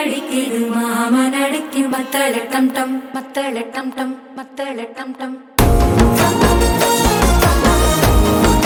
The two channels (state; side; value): identical; both; correlation 1.00